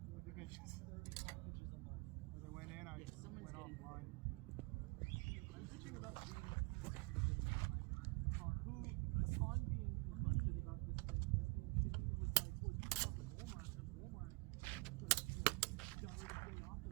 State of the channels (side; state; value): left; quieter; 28.0 dB